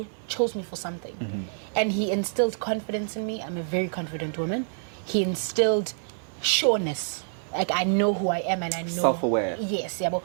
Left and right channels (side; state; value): left; silent; 60 dB below the other